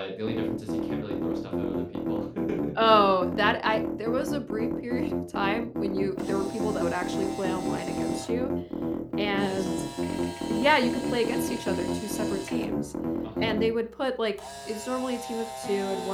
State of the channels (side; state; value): both; identical; correlation 1.00